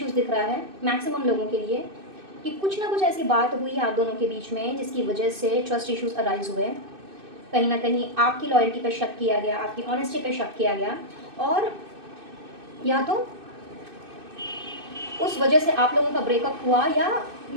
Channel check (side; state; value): left; late; 2.6 ms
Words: दिख रहा है मैक्सिमम लोगों के लिए, कि कुछ ना कुछ ऐसी बात हुई आप दोनों के बीच में जिसकी वजह से ट्रस्ट इश्यूज अराइज हुए। कहीं ना कहीं आपकी लॉयल्टी पे शक किया गया, आपकी ऑनेस्टी पे शक किया गया, और या तो उस वजह से आप लोगों का ब्रेकअप हुआ, या